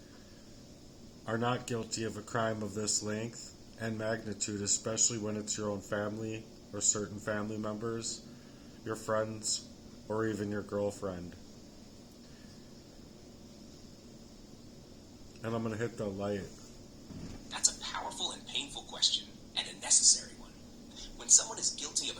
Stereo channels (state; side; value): identical; both; correlation 1.00